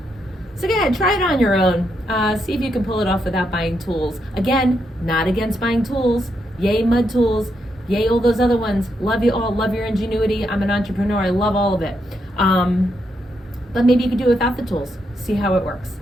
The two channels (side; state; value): both; normal; correlation 0.80